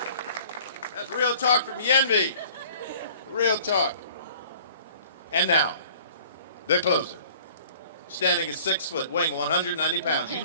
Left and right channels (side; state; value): both; inverted; correlation -0.50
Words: That's real talk from Yenvi. Real talk. And now, the closer. Standing at 6 foot, weighing 190 pounds. You